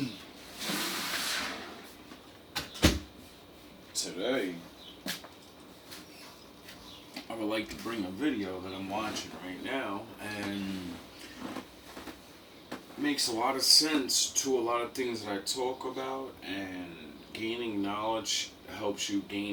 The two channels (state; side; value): identical; both; correlation 1.00